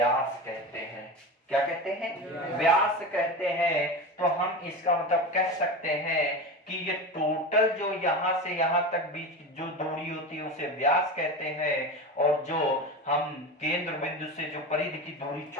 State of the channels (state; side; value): normal; both; correlation 0.25